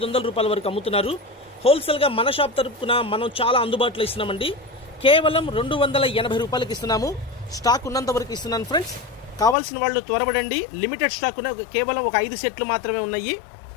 రూపాయల వరకు అమ్ముతున్నారు. హోల్సేల్గా మన షాప్ తరపున మనం చాలా అందుబాటులో ఇస్తున్నామండి. కేవలం 280 రూపాయలకి ఇస్తున్నాము. స్టాక్ ఉన్నంత వరకు ఇస్తున్నాను ఫ్రెండ్స్. కావాల్సిన వాళ్ళు త్వరపడండి. లిమిటెడ్ స్టాక్ కేవలం ఒక 5 సెట్లు మాత్రమే ఉన్నాయి.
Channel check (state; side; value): drops out; right; at 9.6 s